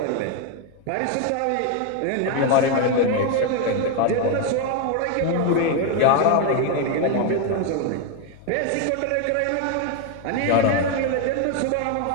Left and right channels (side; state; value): both; different; correlation 0.01